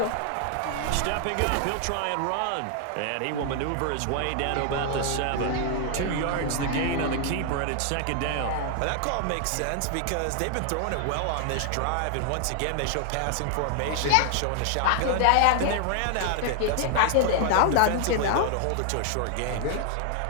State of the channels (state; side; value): different; both; correlation 0.00